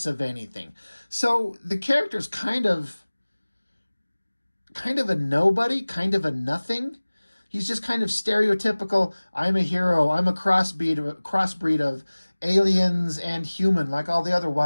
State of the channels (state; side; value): inverted; both; correlation -1.00